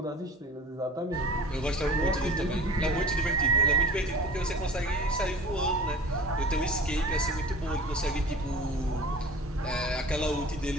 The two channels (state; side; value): normal; both; correlation 0.40